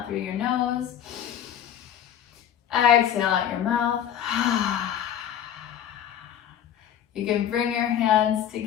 through your nose. Exhale out your mouth. You can bring your hands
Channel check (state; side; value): quieter; right; 9.9 dB